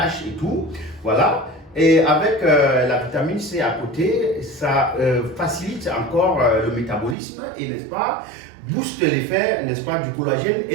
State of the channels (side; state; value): left; drops out; at 7.2 s